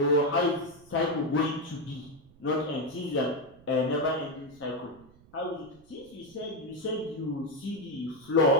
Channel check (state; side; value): noise; right; rumble, 26 dB below the sound